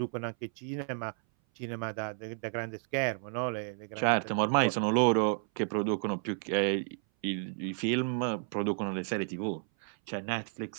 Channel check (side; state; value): left; silent; 56 dB below the other